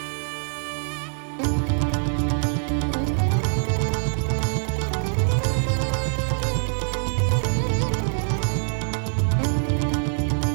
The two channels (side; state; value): left; silent; digital silence